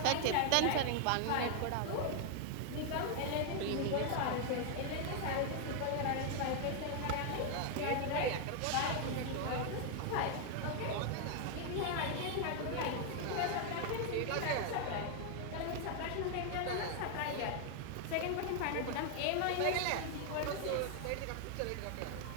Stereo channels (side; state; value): both; different; correlation 0.00